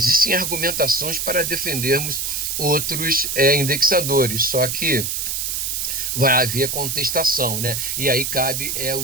argumentações para defendermos outros indexadores, só que vai haver contestação, né? E aí cabe o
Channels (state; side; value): noise; right; hiss, 2 dB below the sound